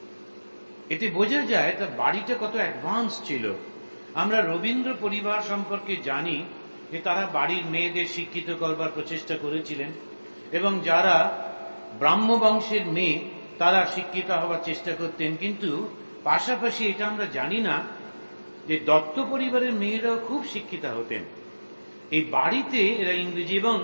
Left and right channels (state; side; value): inverted; both; correlation -1.00